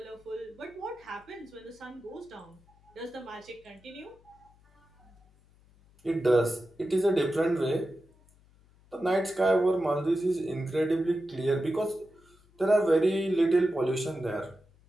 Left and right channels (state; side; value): noise; left; hum, 29 dB below the sound